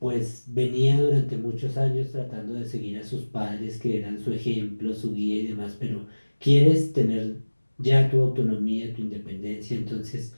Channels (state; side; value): inverted; both; correlation -1.00